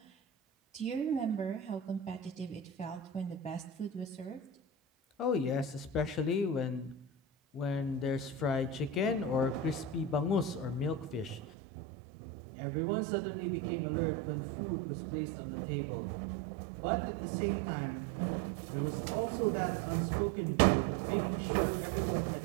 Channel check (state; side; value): drops out; left; at 11.4 s